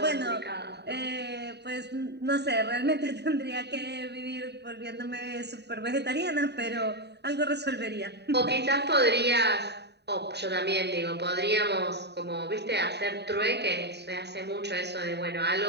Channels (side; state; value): left; late; 0.49 ms